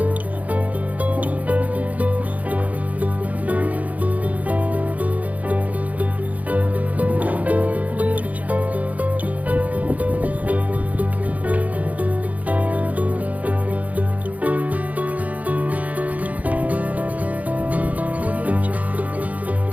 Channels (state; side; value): late; left; 0.074 ms